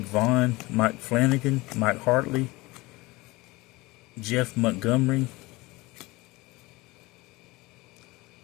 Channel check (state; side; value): quieter; right; 22.0 dB